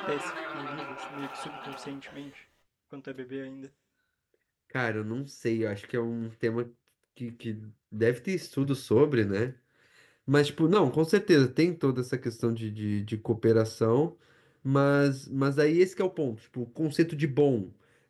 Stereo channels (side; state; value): both; identical; correlation 1.00